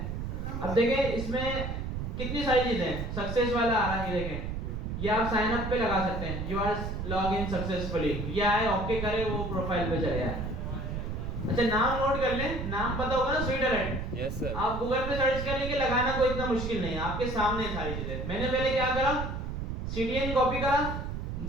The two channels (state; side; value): noise; right; rumble, 4 dB below the sound